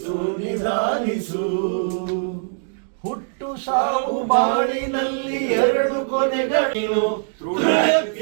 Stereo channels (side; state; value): left; silent; digital silence